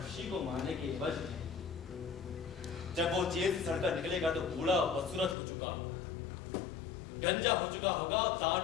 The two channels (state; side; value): drops out; right; at 5.4 s